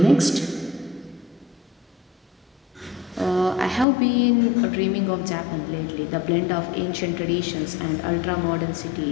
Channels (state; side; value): drops out; right; at 3.9 s